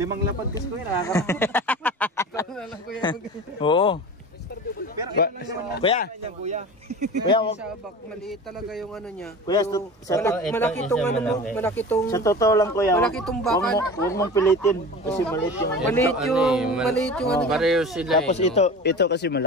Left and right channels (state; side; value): normal; both; correlation 0.34